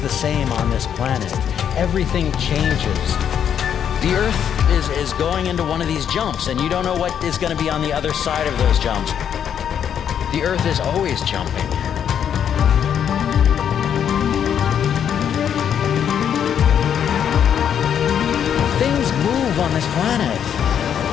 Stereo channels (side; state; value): right; quieter; 8.7 dB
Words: the same on this planet. Everything changes. The Earth is going into one of these jumps, and you don't know what is going to be on the other side of those jumps. The Earth is always jumping. Things move on this planet.